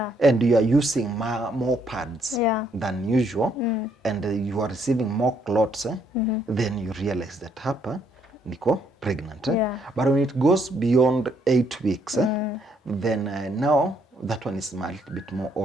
and you are using more pads than usual and you are receiving more clots. Then you realize that hapa niko pregnant. But when it goes beyond 8 weeks, then now that one is a little bit more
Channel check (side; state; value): both; normal; correlation 0.70